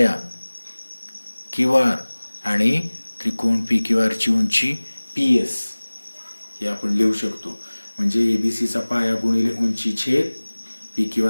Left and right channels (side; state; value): both; inverted; correlation -1.00